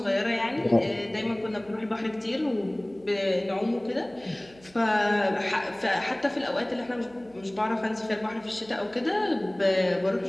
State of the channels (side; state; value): right; noise; hum, 26 dB below the sound